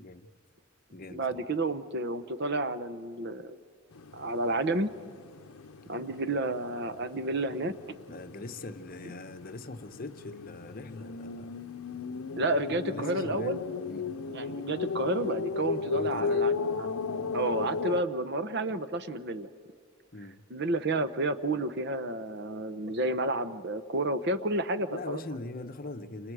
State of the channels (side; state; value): both; normal; correlation -0.10